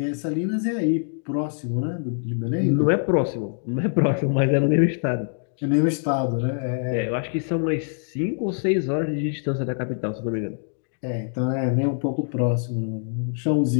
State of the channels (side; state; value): right; silent; digital silence